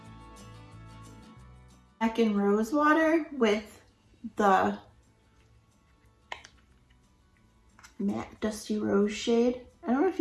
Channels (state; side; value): identical; both; correlation 1.00